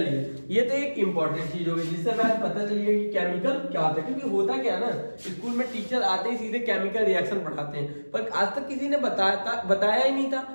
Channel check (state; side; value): inverted; both; correlation -1.00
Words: ये तो एक इंपॉर्टेंट चीज होगी जिससे हमें पता चलिए कि केमिकल क्या होता है। क्योंकि होता क्या है ना, स्कूल में टीचर आते ही सीधे केमिकल रिएक्शन पढ़ाते हैं, पर आज तक किसी ने बताया ही नहीं था